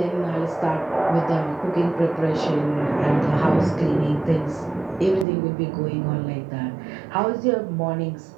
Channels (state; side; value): drops out; left; at 5.2 s